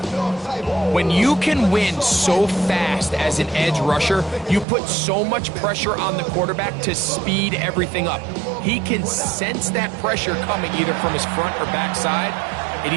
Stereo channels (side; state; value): left; drops out; at 4.7 s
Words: When you can win so fast as an edge rusher, you put so much pressure on the quarterback to speed everything up. He can sense that pressure coming either from his front or back side. It